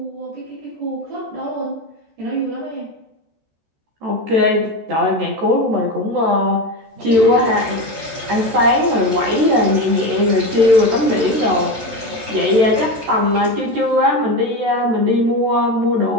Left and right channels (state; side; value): late; left; 14 ms